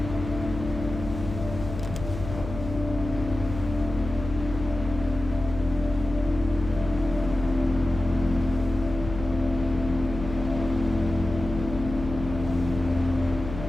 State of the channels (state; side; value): noise; left; hum, 9 dB below the sound